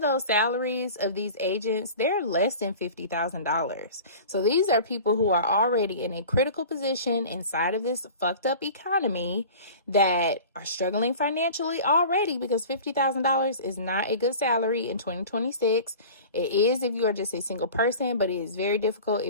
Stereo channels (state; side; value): inverted; both; correlation -0.39